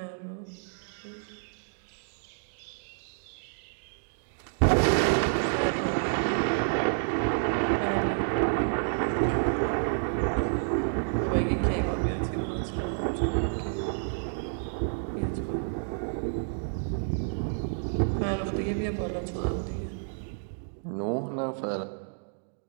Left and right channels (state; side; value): silent; left; digital silence